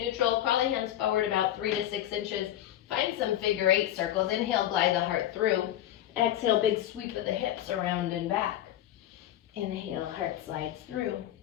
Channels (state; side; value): quieter; right; 12.5 dB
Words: crawl the hands forward about 3 to 6 inches. Find some figure 8 circles. Inhale, glide the heart through. Exhale, big sweep of the hips around and back. Inhale, heart slides through.